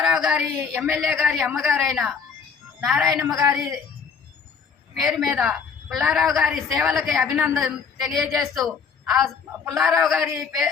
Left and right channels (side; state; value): right; quieter; 6.1 dB